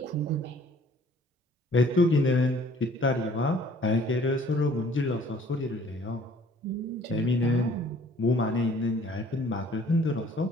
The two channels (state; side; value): normal; both; correlation 0.55